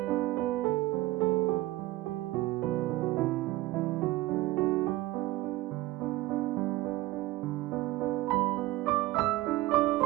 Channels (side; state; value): left; quieter; 17.9 dB